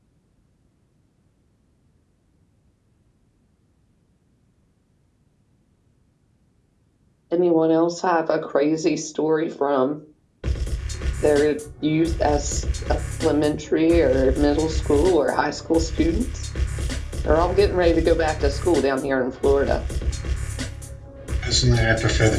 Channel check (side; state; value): both; identical; correlation 1.00